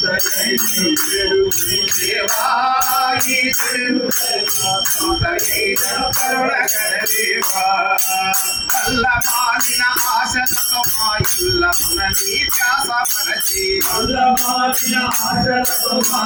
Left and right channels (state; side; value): identical; both; correlation 1.00